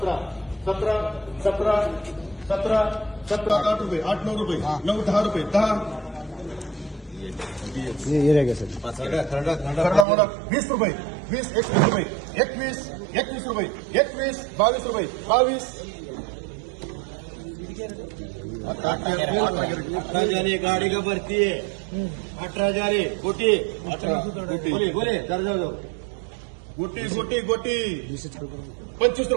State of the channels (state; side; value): drops out; left; at 10.1 s